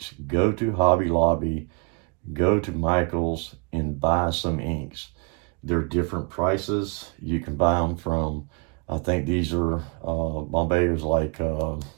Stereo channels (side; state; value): left; quieter; 32.1 dB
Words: Go to Hobby Lobby, go to Michael's and buy some inks. They're different prices. You can buy them from, I think these are, Bombay's like